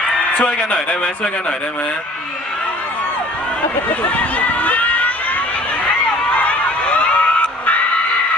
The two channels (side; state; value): both; normal; correlation 0.51